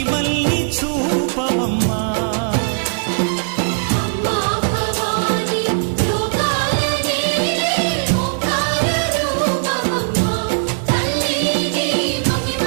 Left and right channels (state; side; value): silent; left; digital silence